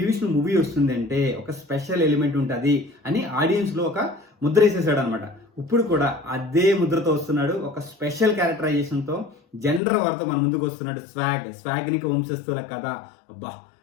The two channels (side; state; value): right; drops out; at 9.8 s